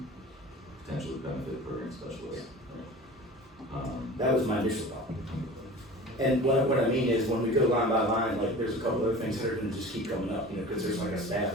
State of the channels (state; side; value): normal; both; correlation 0.38